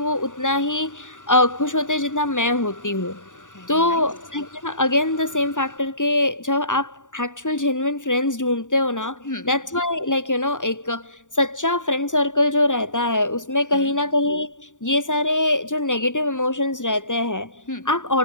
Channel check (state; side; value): late; right; 0.86 ms